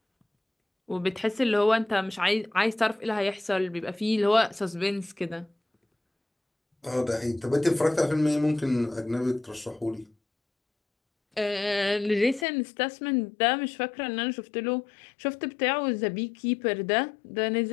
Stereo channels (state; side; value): drops out; right; at 12.5 s